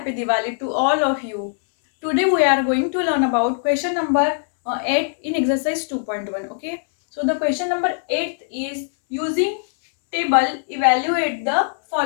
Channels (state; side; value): silent; right; 65 dB below the other